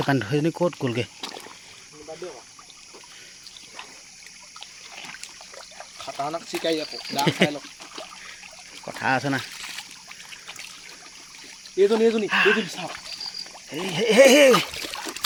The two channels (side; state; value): both; identical; correlation 1.00